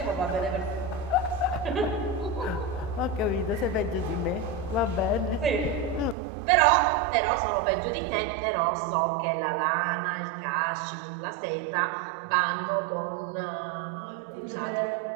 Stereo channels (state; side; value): drops out; left; at 6.2 s